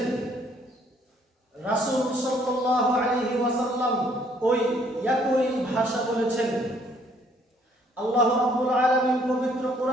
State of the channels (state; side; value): normal; both; correlation 0.64